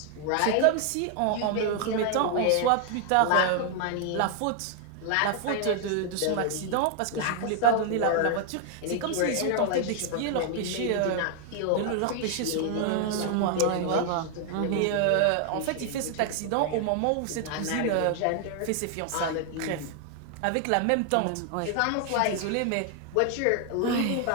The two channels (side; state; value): both; different; correlation 0.00